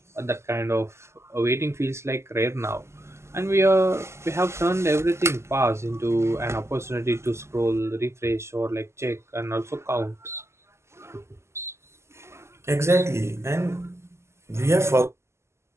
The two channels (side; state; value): left; late; 0.13 ms